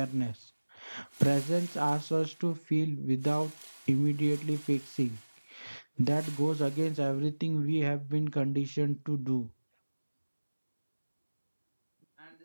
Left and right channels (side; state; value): both; inverted; correlation -1.00